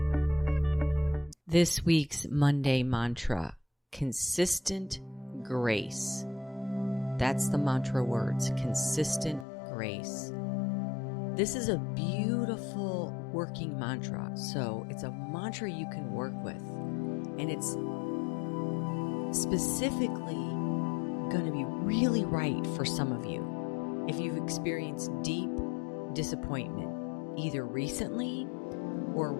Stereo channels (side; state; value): right; drops out; at 9.5 s